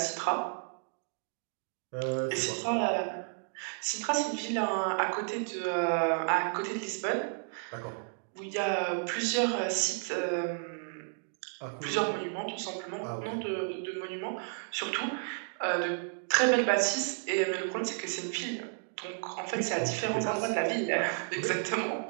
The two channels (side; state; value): left; silent; 56 dB below the other